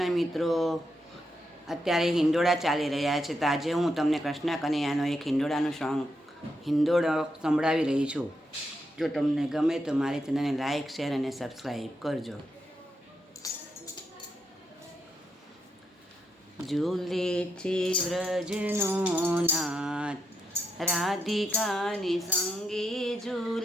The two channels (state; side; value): normal; both; correlation 0.82